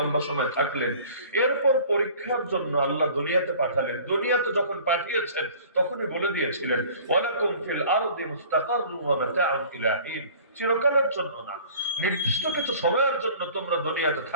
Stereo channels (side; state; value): both; inverted; correlation -0.47